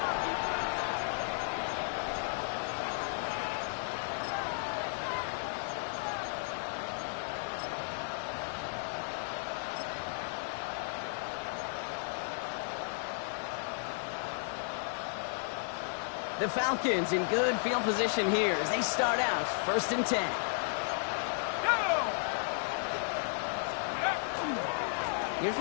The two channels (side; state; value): right; silent; 55 dB below the other